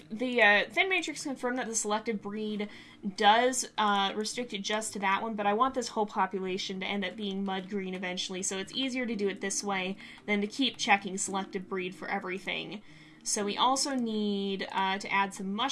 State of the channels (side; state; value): both; identical; correlation 1.00